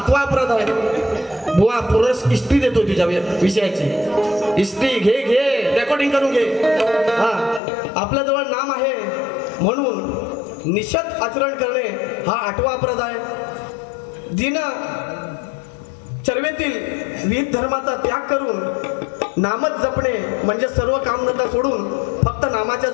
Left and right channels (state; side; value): drops out; right; at 7.6 s